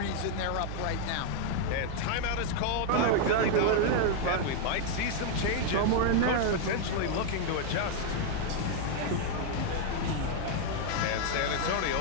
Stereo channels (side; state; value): both; different; correlation 0.00